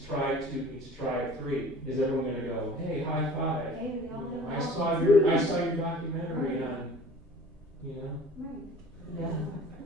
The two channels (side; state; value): both; normal; correlation 0.46